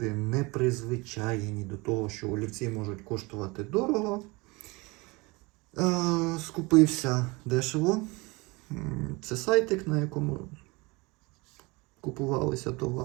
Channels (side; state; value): left; quieter; 25.2 dB